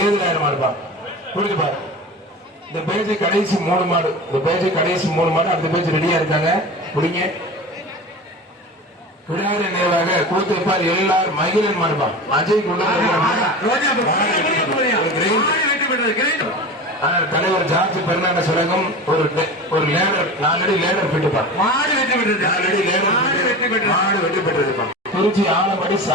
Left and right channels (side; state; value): both; normal; correlation 0.32